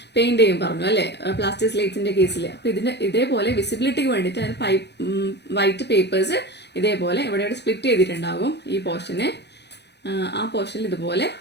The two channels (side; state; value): right; late; 0.50 ms